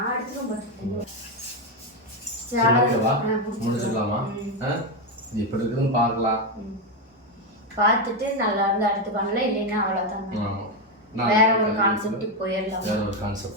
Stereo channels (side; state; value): both; normal; correlation 0.08